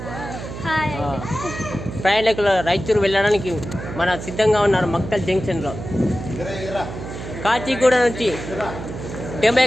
ప్రయాణికులు రాయచూరు వెళ్ళడానికి మన సిద్ధంగా ఉన్నారు. మక్తల్ జంక్షన్లో కాచిగూడ నుంచి demo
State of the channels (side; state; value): right; noise; hum, 9 dB below the sound